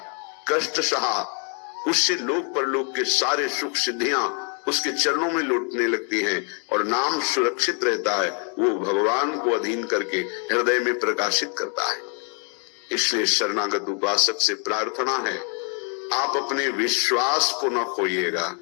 कष्ट सहा, उससे लोक परलोक के सारे सुख सिद्धियां उसके चरणों में लौटने लगती हैं और नाम सुरक्षित रहता है। वो भगवान को अधीन करके हृदय में प्रकाशित करता है। इसलिए शरणागत उपासक से प्रार्थना है, आप अपने विश्वास को न खोइएगा।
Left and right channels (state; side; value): quieter; right; 38.6 dB